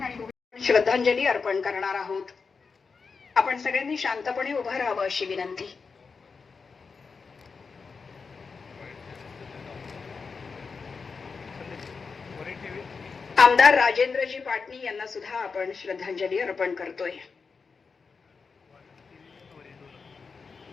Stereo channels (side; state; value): right; quieter; 5.0 dB